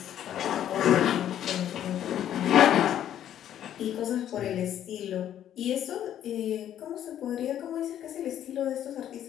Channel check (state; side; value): quieter; right; 10.8 dB